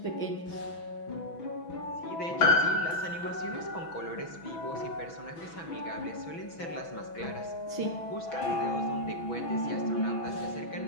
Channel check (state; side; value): late; right; 6.1 ms